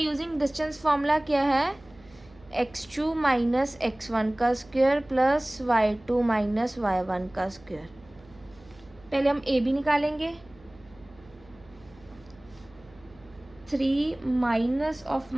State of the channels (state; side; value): noise; right; hum, 25 dB below the sound